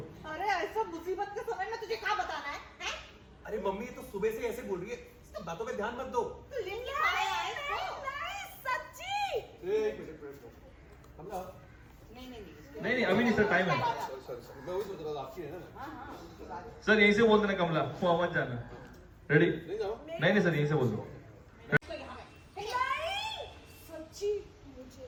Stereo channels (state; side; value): identical; both; correlation 1.00